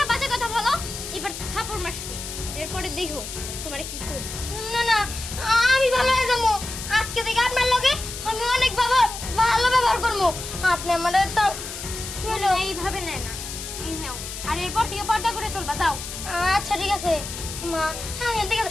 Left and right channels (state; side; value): noise; left; hiss, 8 dB below the sound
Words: বাজে কথা বলো, এবার থাপড় মারছি, এরপরে দেখো তোমারে কি করি। না না, আমি ভালো হয়ে যাবো। আজকে থেকে আপনার লগে আমি অনেক ভালো ব্যবহার করবো। আপনি আমার এইভাবে নেয় না, এই নাও। আর এরপর থেকে পর্দা করে চলবা, যাও। আচ্ছা ঠিক আছে মা, আমি ঠিক